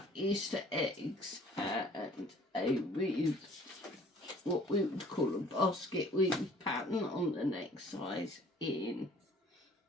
Easter eggs and a weave, what we would call a basket weave pattern on the next side in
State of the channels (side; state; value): both; normal; correlation 0.54